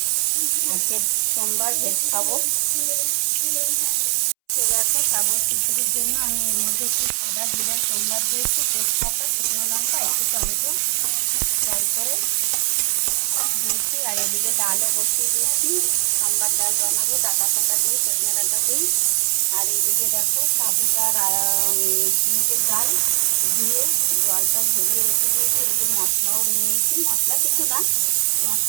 আজকে সোমবার ভেজ খাবো। তো দেখো, সাবুর খিচুড়ির জন্য আমি এর মধ্যে একটু সাদা জিরা সোমবার দিয়েছি, তেজপাতা, শুকনো লঙ্কা, একটু টমেটো ফ্রাই করে দিয়েছি। আর এদিকে ডালও বসিয়ে দিয়েছি, সোমবার ডাল বানাবো ডাঁটা ফাটা দিয়ে, সজনে ডাঁটা দিয়ে। আর এইদিকে দেখো সাবুটার মুগের ডাল ধুয়ে জলটা ঝরিয়ে রেখে দিয়েছি। এদিকে মশলাও নিয়েছি, মশলা কিছু না, তোমার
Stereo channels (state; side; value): silent; left; 65 dB below the other